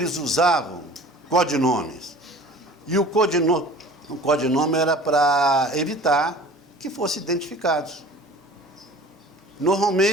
usavam codinomes. E o codinome era para evitar que fossem identificados.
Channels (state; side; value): normal; both; correlation 0.44